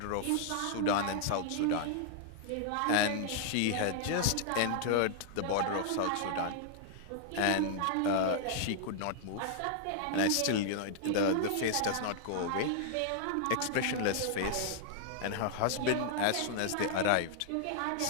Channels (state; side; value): different; both; correlation -0.01